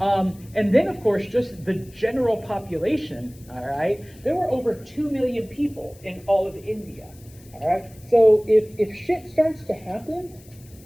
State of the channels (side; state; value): left; noise; hiss, 25 dB below the sound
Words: then, of course, just the general population, all right? There were over 2 million people in all of India, all right? So if shit starts to happen,